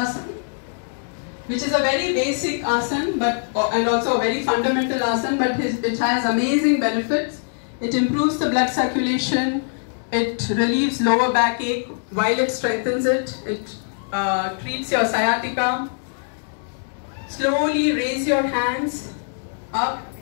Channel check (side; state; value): right; silent; digital silence